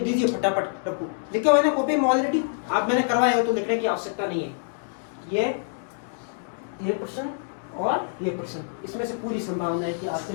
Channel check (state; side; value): silent; right; digital silence